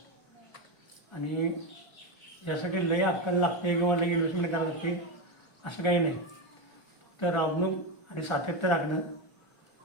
आणि यासाठी लय अक्कल लागते किंवा लय इन्व्हेस्टमेंट करावं लागते असं काही नाही. तर राबणूक आणि सातत्य राखणं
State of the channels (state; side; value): late; right; 1.4 ms